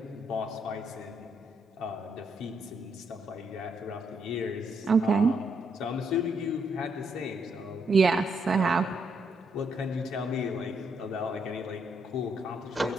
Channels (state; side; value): normal; both; correlation 0.76